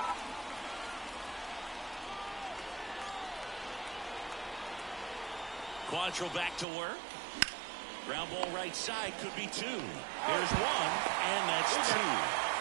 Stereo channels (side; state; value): left; drops out; at 6.7 s